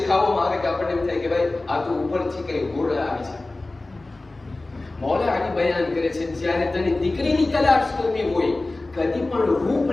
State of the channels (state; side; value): quieter; right; 3.0 dB